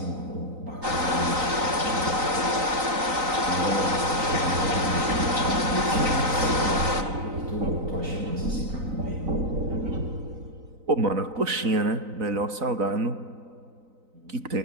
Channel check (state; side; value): late; left; 3.9 ms